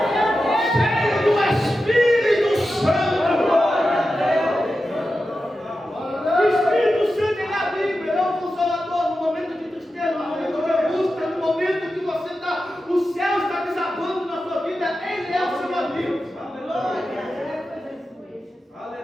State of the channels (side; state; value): both; normal; correlation 0.91